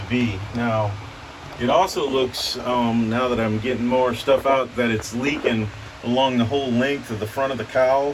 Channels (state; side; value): identical; both; correlation 1.00